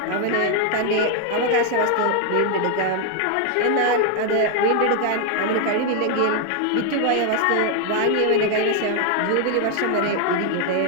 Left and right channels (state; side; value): different; both; correlation 0.00